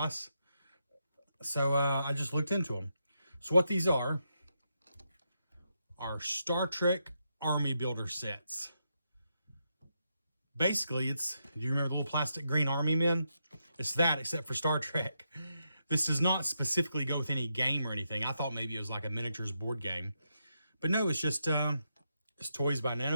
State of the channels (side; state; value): both; inverted; correlation -0.83